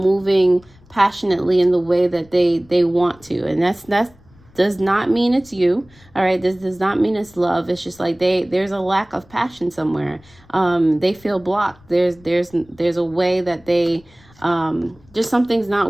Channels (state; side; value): noise; left; rumble, 28 dB below the sound